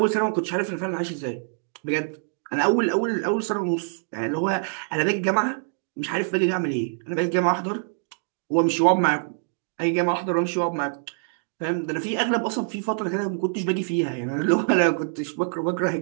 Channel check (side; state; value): left; silent; digital silence